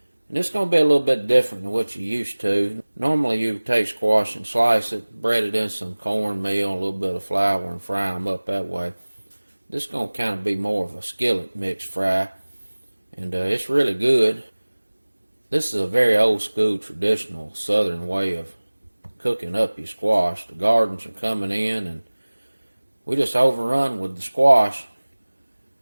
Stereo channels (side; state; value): both; inverted; correlation -1.00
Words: And it's going to be a little bit different than what you're used to. Normally you take squash and slice it, bread it in some cornmeal, a little bit of flour, and fry them up that way. This is going to kind of be more of a skillet mix fry. And it's really good. This is a very old school traditional southern way of cooking up your squash. The gardens are coming in and we just overrun with the squash.